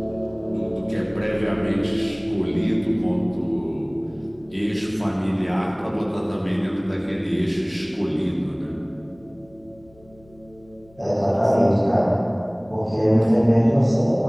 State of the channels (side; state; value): left; noise; hum, 28 dB below the sound